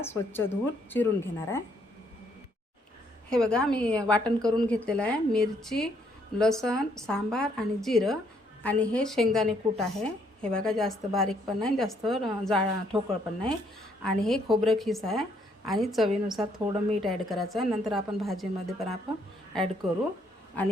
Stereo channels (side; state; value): both; normal; correlation 0.69